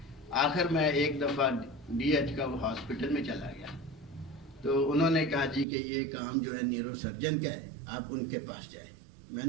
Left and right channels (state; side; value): drops out; left; at 5.7 s